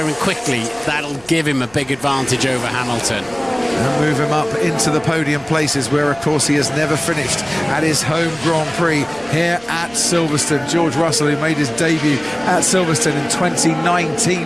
him quickly, that'll give him a big advantage over Hamilton. And move him up into the podium places, where, of course, he has never finished at his home Grand Prix here at Silverstone. George Russell, who made his debut at Silverstone in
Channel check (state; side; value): noise; right; rumble, 26 dB below the sound